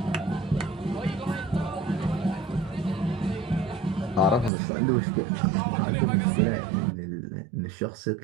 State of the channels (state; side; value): drops out; left; at 4.5 s